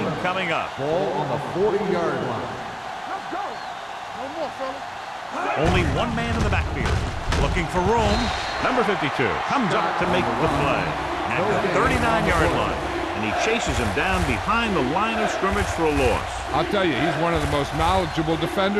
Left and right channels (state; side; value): identical; both; correlation 1.00